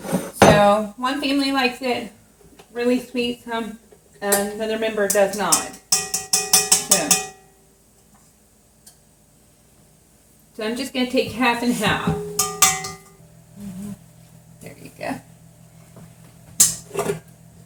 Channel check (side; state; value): both; identical; correlation 1.00